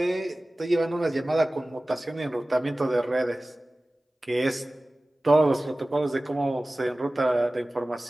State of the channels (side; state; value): both; normal; correlation 0.97